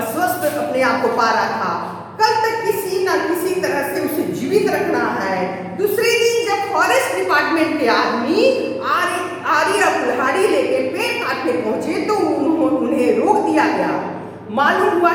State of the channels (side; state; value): both; identical; correlation 1.00